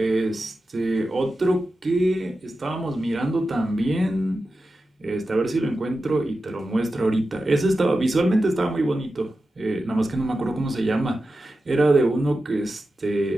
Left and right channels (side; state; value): both; normal; correlation 0.92